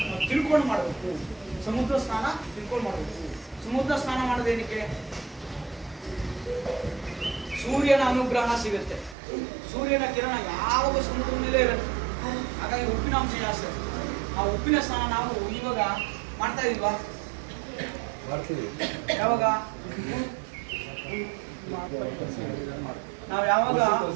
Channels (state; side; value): drops out; left; at 9.2 s